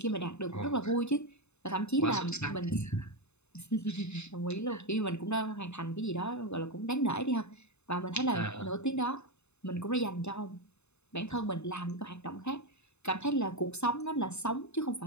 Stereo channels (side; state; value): right; late; 0.81 ms